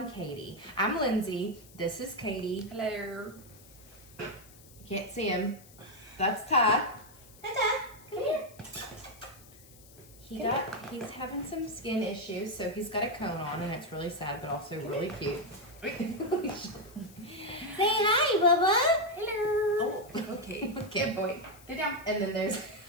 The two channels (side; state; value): left; noise; hiss, 23 dB below the sound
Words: Katie. I'm Lindsay. This is Katie. Hello. Can't see him. That's Ty. Hi, Ty. Come here. He's having some skin issues, so he's got a cone on, and it's really sad, but also really cute. Say hi, Bubba. Hello. Oh, okay. Good boy. Sit down. And then there's,